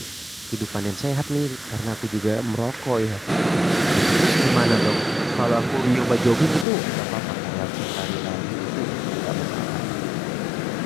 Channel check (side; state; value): right; drops out; at 6.7 s